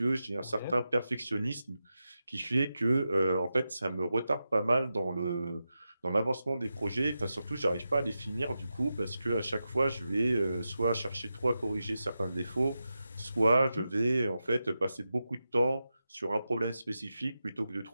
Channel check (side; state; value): both; inverted; correlation -0.90